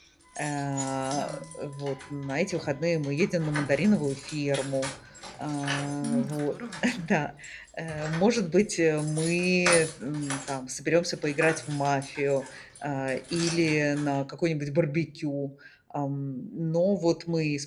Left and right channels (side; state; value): both; identical; correlation 1.00